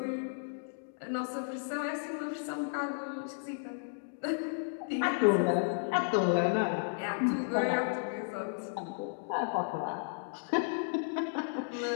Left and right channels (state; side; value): silent; right; digital silence